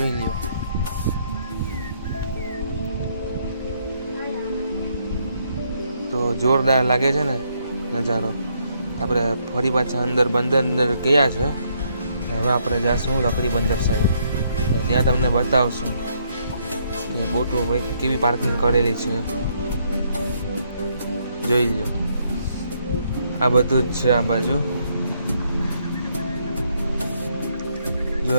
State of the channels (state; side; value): inverted; both; correlation -0.72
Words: લ્યો તો જોરદાર લાગે છે ને નજારો. આપણે ફરી પાછા અંદર બંદર ગયા છે. હવે આપણે જાશું લકડી બંદર સાઈડ. ત્યાં તમને બતાવશું કે બોટો કેવી પાર્કિંગ કરેલી છે. જોઈ લો આ બધું જ છે આ બાજુ. જો